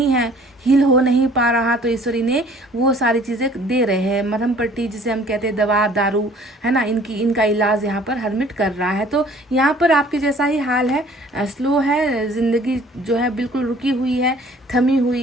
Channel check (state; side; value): normal; both; correlation 0.54